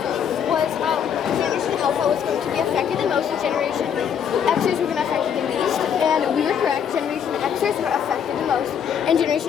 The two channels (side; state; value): right; quieter; 8.1 dB